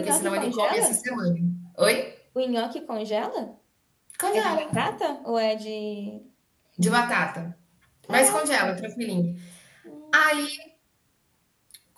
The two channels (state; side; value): identical; both; correlation 1.00